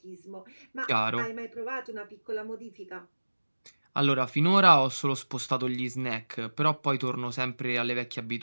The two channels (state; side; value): inverted; both; correlation -1.00